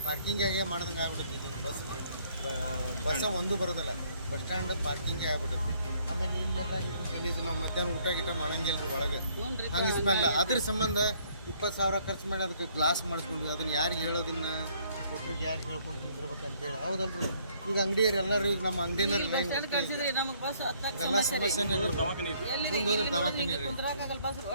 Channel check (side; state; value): both; inverted; correlation -0.64